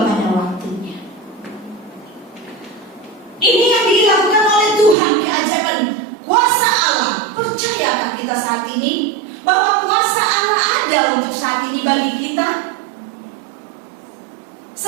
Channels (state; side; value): drops out; left; at 5.0 s